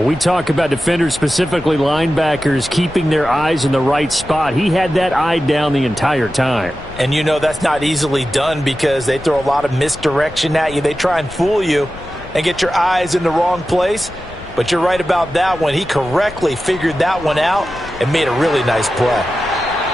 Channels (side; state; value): left; noise; rumble, 16 dB below the sound